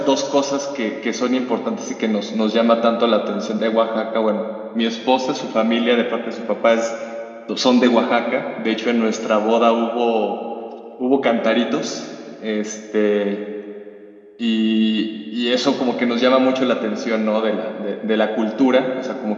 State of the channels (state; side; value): identical; both; correlation 1.00